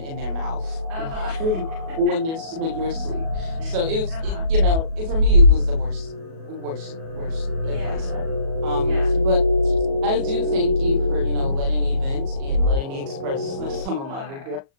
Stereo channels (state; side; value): late; left; 37 ms